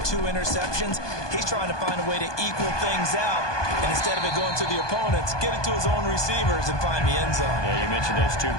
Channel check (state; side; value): late; right; 1.2 ms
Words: 2 interceptions. He's trying to find a way to equal things out. And instead of it going to the opponents, get it to his own receivers and find the end zone. Yeah, you mentioned those 2